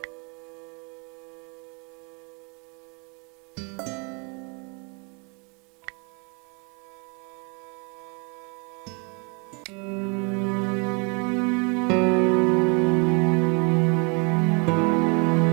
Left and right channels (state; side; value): quieter; left; 33.1 dB